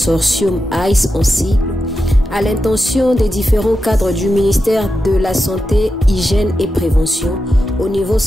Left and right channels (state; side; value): normal; both; correlation 0.89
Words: ICE en sigle, à l'intention des différents cadres du ministère de la Santé, Hygiène et Prévention, au niveau